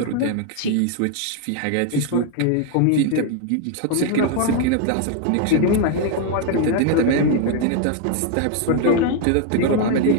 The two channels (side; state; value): both; different; correlation 0.00